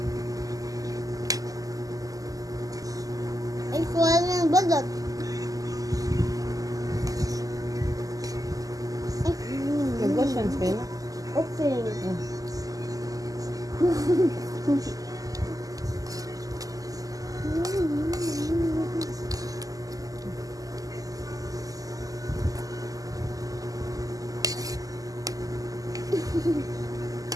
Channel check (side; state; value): left; late; 0.17 ms